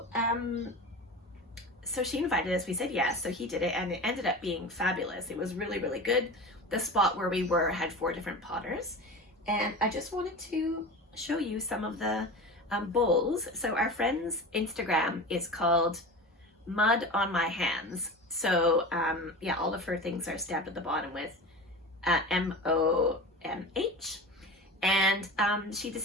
so she invited us, we said yes, so he did it, and it ended up being fabulous. It was really, really good. The spot where we were had 4 different potters, and I just wanted to show you some of the bowls. So our friend's Instagram is called Mud on My Hands. So yeah, all of her things are stamped at the bottom with MOMH. And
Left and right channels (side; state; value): both; normal; correlation 0.31